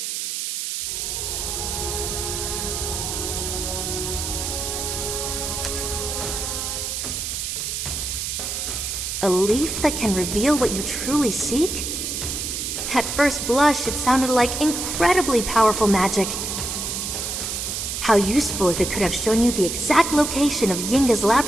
A leaf that can reveal what you truly seek? At first blush, it sounded like incredibly powerful magic. How useful if it could have shown you the exact location of Yinga's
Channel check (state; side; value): noise; right; hiss, 3 dB below the sound